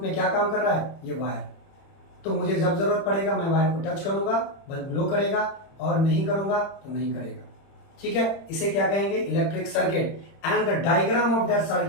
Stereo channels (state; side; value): late; right; 30 ms